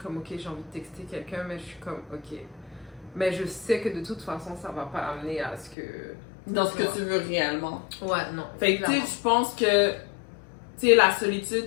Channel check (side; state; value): right; drops out; at 5.8 s